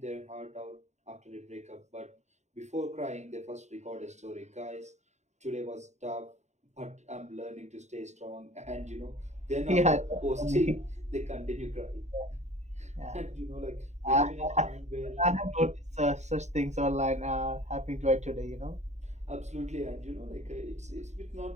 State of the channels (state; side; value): late; left; 0.33 ms